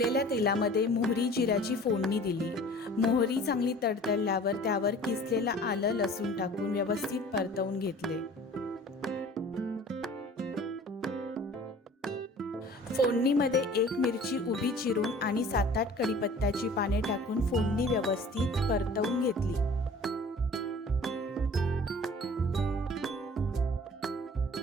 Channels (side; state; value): both; normal; correlation 0.47